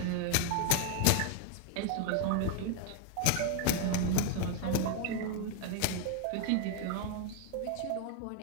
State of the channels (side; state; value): both; different; correlation 0.01